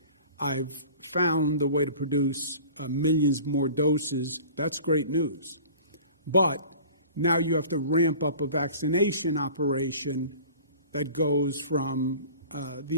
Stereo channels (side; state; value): both; inverted; correlation -0.43